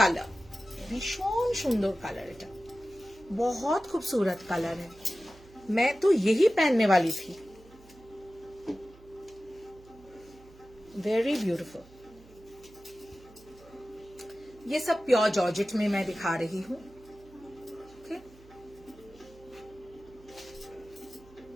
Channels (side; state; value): right; noise; hum, 23 dB below the sound